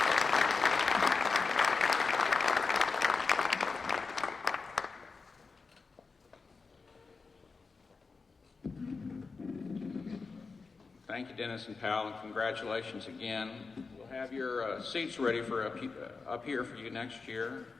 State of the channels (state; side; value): quieter; right; 4.5 dB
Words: Thank you, Dennis and Pal, and congratulations again. We'll have your seats ready for up here for you next year.